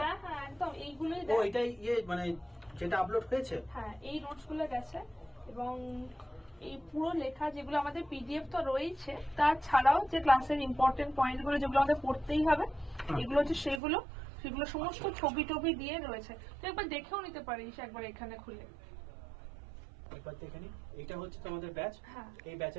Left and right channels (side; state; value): left; drops out; at 13.8 s